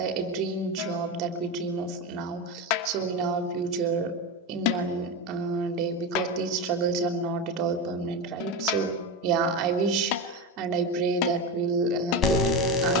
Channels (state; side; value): normal; both; correlation 0.18